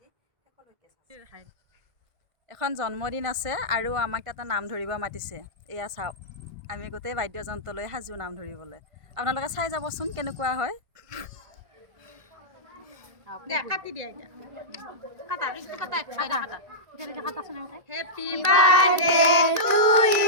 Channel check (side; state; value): left; late; 1.5 ms